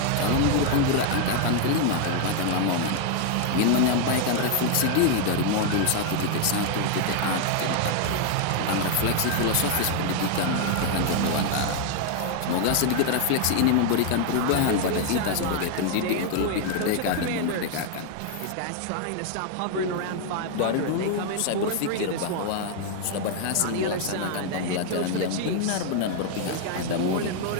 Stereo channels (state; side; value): different; both; correlation 0.00